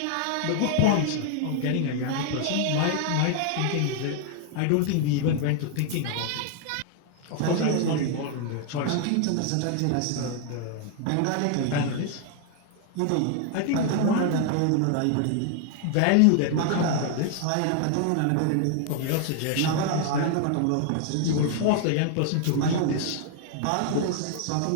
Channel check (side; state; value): both; different; correlation 0.00